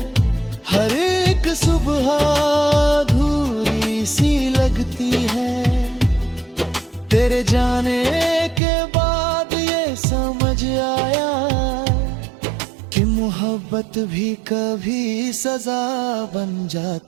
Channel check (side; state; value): left; drops out; at 8.6 s